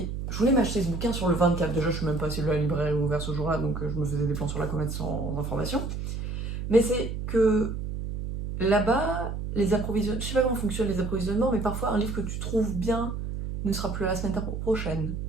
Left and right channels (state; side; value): noise; right; hum, 5 dB below the sound